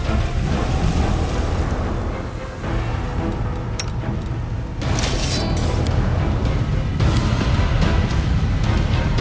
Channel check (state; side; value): identical; both; correlation 1.00